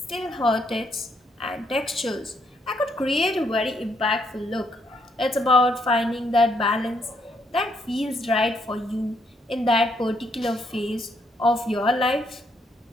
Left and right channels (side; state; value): both; normal; correlation 0.73